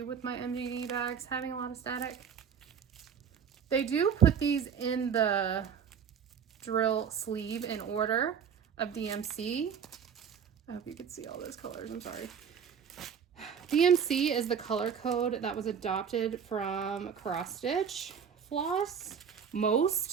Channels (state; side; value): quieter; left; 7.4 dB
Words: with my MDD bags having a lot of static. They do put these in the drill sleeve in order of DMC. I hope you can see all those colors, I'm sorry. DMC is the color code that was adopted from cross stitch floss.